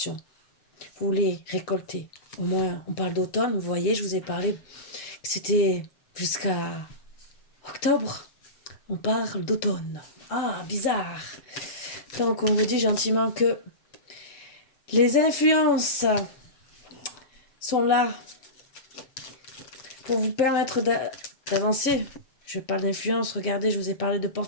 Vous voulez récolter. Au moins, on parle d'automne. Vous voyez, je vous ai parlé que c'était jusqu'à octobre. On parle d'automne. Ah, bizarre. Donc, on vous dit gentiment que les influences sont là pour vous permettre d'avancer. Je parle d'influence. Regardez, je vous ai parlé de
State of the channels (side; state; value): right; late; 7.2 ms